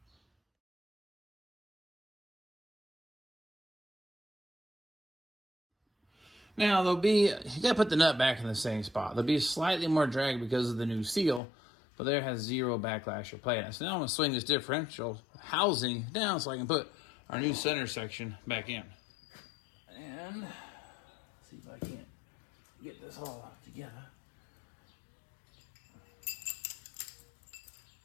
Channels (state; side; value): drops out; right; at 11.4 s